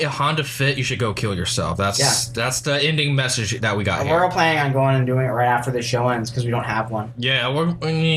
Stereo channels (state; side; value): identical; both; correlation 1.00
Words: Honda Fit, you should go kill yourself. That's the ending message that we got And here. we're all planning on going and doing it right after the show ends because we don't have one. Yeah, we're